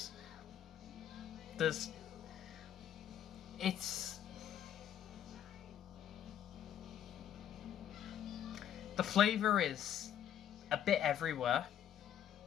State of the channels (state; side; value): quieter; right; 10.1 dB